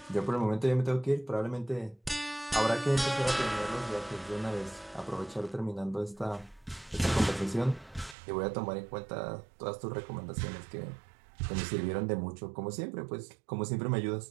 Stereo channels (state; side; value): drops out; left; at 8.2 s